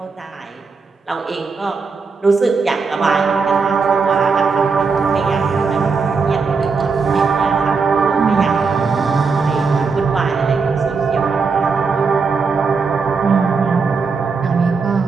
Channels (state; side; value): quieter; left; 4.9 dB